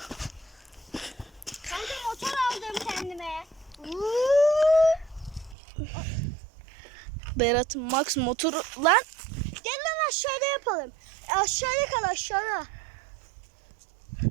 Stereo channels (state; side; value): drops out; left; at 5.6 s